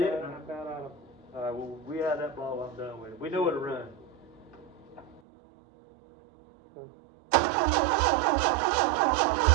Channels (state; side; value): drops out; left; at 5.2 s